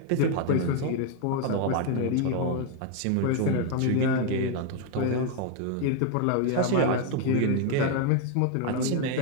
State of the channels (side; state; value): both; different; correlation 0.01